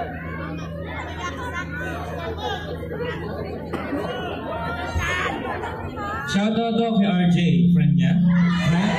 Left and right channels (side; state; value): both; identical; correlation 1.00